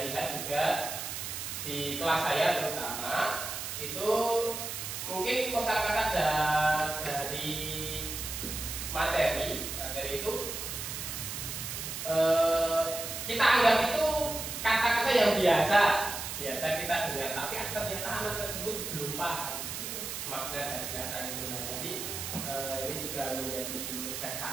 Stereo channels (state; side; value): noise; right; hiss, 5 dB below the sound